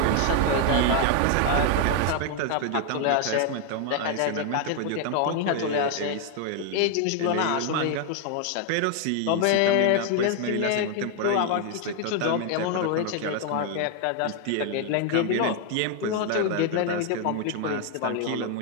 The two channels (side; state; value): both; different; correlation 0.00